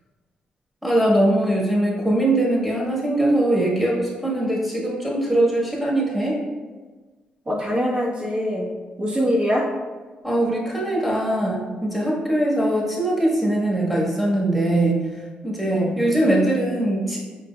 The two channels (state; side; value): normal; both; correlation 0.81